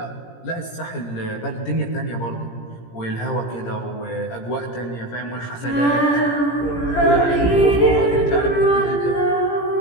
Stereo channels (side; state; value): right; late; 17 ms